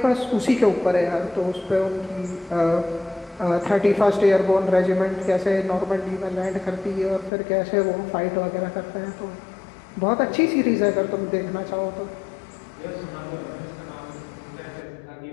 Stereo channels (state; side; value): drops out; right; at 7.3 s